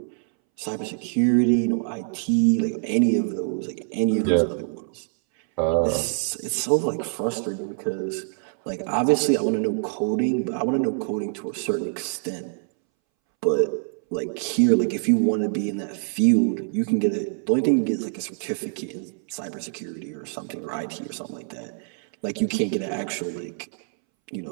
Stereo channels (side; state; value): left; silent; 62 dB below the other